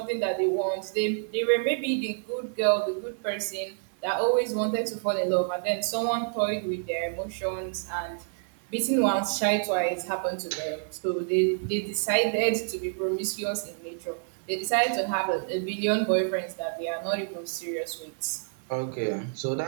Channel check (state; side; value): silent; left; 56 dB below the other